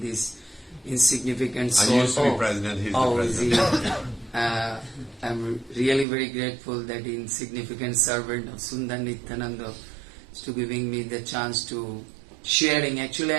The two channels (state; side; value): drops out; left; at 6.1 s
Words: insignificant I soul. used to be president, he's the Is president. he? I'm really very grateful that insignificant servant of Sundar Nityananda is to giving me the chance to sharing. Actually,